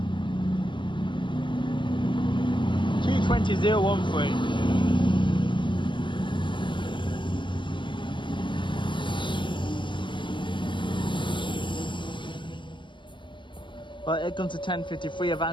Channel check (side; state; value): right; late; 0.24 ms